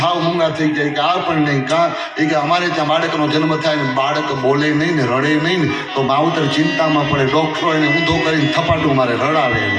હાવ મૂંગા થઈ જાય કે આ પણ નહીં. કાં એ કે અમારે ત્યાં બાળકનો જન્મ થાય ને બાળક બોલે નહીં ને રડે નહીં ને તો માવતર ચિંતામાં પડે. ડોક્ટરો એને ઊંધો કરીને થપાટું મારે રડાવે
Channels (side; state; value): both; identical; correlation 1.00